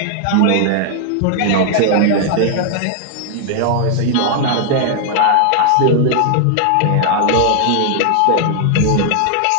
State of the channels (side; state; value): both; different; correlation 0.00